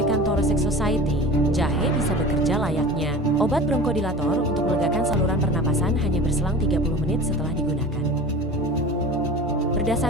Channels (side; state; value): both; normal; correlation 0.36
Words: Thoracic Society, jahe bisa bekerja layaknya obat bronkodilator untuk melegakan saluran pernapasan hanya berselang 30 menit setelah digunakan.